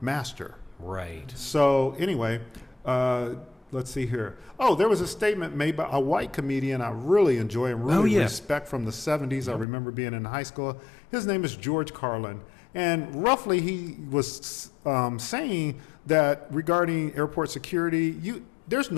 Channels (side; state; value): right; drops out; at 9.7 s